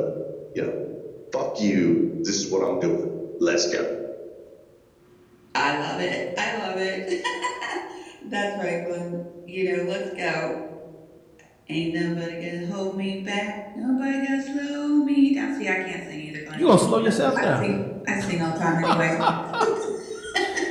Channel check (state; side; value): identical; both; correlation 1.00